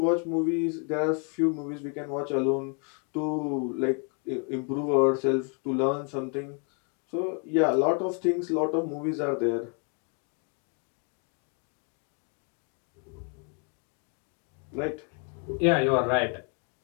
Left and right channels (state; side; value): quieter; right; 39.8 dB